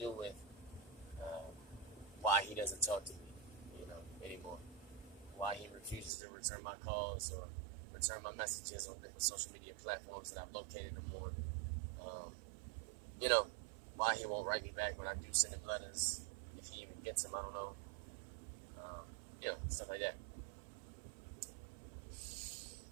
with why he doesn't talk to me, anymore. Why he refuses to return my calls or return my messages on different social media platforms that I've located him on. Why he won't write me back when I do send him letters, if he even gets them, I don't know. Stuff like that.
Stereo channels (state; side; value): drops out; left; at 6.1 s